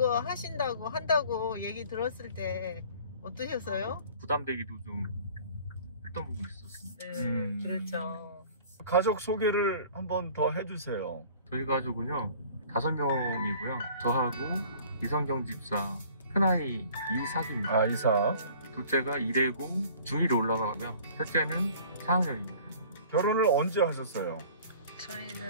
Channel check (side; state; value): both; inverted; correlation -0.49